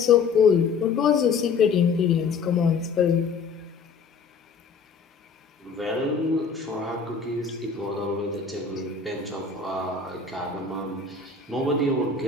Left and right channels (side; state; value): right; quieter; 5.2 dB